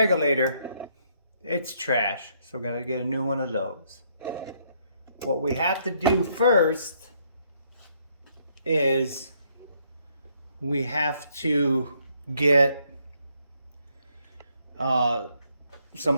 It's trash, so we're gonna get a new one of those. What we have to do first is we have to get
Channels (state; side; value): inverted; both; correlation -0.71